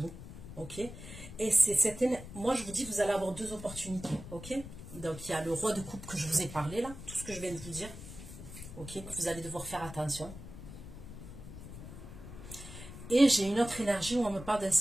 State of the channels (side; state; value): left; noise; rumble, 12 dB below the sound